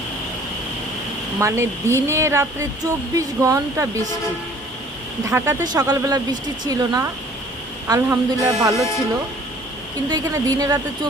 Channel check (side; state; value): both; normal; correlation 0.53